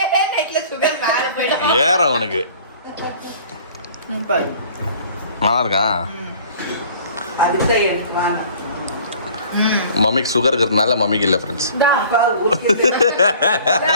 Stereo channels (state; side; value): inverted; both; correlation -0.50